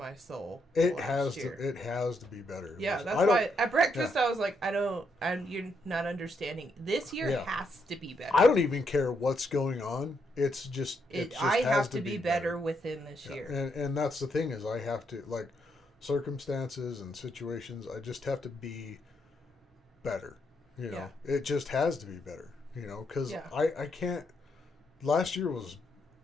soul. It last year. It has to be better. Yeah, that's why at breakfast I was like, you're not understanding. This year has to be better. I don't even care what's going on. It's just I have to be better within this year. And that's the thing is I have to, like, circumstances and situations, I just have to be better. You know, it just has to be better. You know, because I can't. Last year was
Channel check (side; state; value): both; normal; correlation 0.78